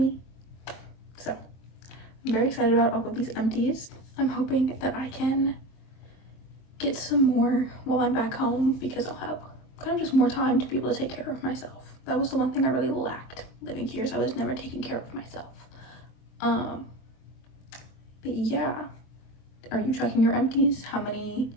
So I'm very excited about all of these empties. I'm hoping that I can get some more while I'm back home, because I'll have kind of just more time to be able to take care of myself. That was the one thing I really lacked living here, so I was never taking care of myself. But yeah, are you tracking your empties? How many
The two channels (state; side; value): late; right; 23 ms